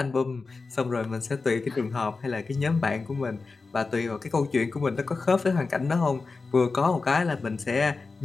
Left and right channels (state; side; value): quieter; right; 4.1 dB